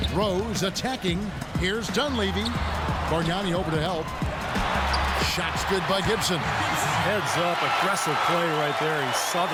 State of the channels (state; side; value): identical; both; correlation 1.00